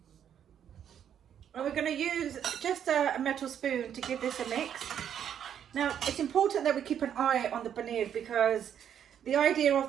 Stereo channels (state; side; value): quieter; left; 9.2 dB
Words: And we're going to use just a metal spoon to give this a mix. Now it's important that we keep an eye on the paneer because the idea